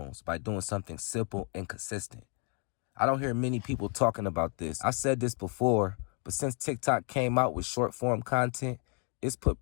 by doing something simple and consistent. I don't hear many people talking about this. I've said this before, but since TikTok came out with short form content, it's put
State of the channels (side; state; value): right; quieter; 37.0 dB